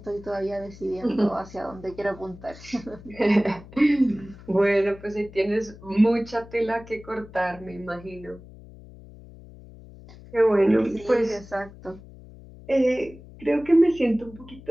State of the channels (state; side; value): noise; left; hum, 19 dB below the sound